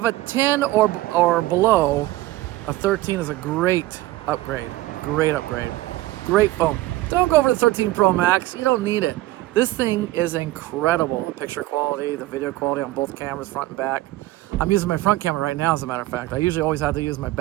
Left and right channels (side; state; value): left; quieter; 17.3 dB